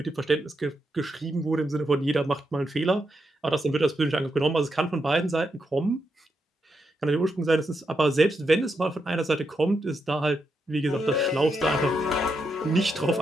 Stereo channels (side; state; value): both; normal; correlation 0.83